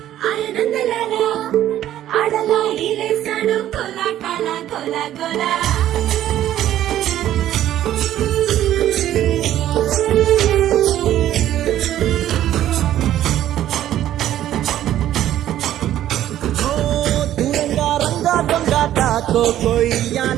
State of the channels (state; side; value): quieter; left; 12.4 dB